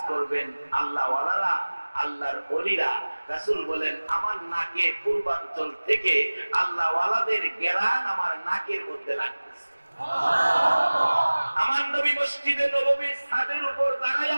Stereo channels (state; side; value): inverted; both; correlation -1.00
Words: করবেন আল্লাহ ওয়ালারা, আল্লাহর ওলিরা। রাসূল বলেন, আমার নাকে পূর্বাঞ্চল থেকে আল্লাহ ওয়ালাদের ঘেরান আমার নাকের মধ্যে লাগতেছে। আমার নবী মসজিদে নববীর ছাদের উপর